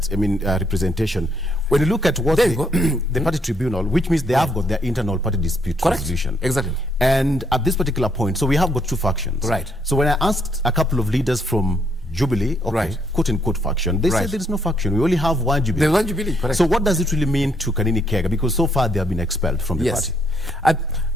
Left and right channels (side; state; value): both; normal; correlation 0.72